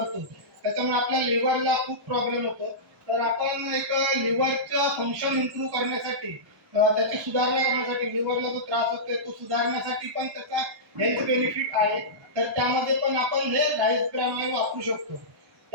त्याच्यामुळे आपल्या लिव्हरला खूप प्रॉब्लेम होतो. तर आपण एक लिव्हरचं फंक्शन इम्प्रूव्ह करण्यासाठी त्याची सुधारणा करण्यासाठी लिव्हरला जो त्रास होतोय तो सुधारण्यासाठी पण त्याचा हेल्थ बेनिफिट आहे. तर त्यामध्ये पण आपण हे राईस ब्रॅन ऑइल वापरू शकतो.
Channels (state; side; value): normal; both; correlation -0.16